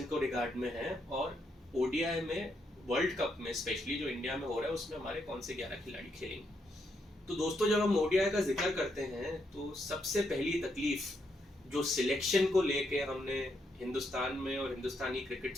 को रिगार्ड में है, और ओडीआई में वर्ल्ड कप में स्पेशली जो इंडिया में हो रहा है उसमें हमारे कौन से 11 खिलाड़ी खेलेंगे। तो दोस्तों, जब हम ओडीआई का जिक्र करते हैं तो सबसे पहली तकलीफ जो सिलेक्शन को लेके हमने हिंदुस्तान में और हिंदुस्तानी क्रिकेट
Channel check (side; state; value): both; normal; correlation 0.78